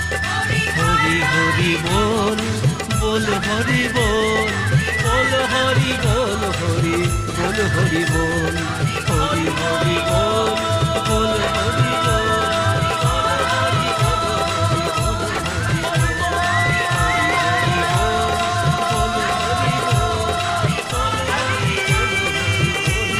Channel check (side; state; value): both; identical; correlation 1.00